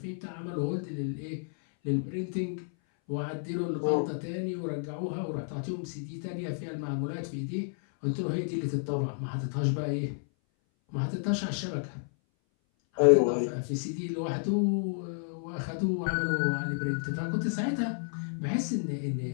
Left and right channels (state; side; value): silent; right; 57 dB below the other